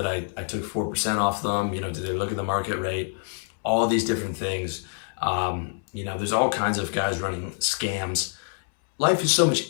I took 4% off them? Did they look at the market rate? All these different things. There's all kinds of guys running scams. Life is so much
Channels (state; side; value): silent; right; 61 dB below the other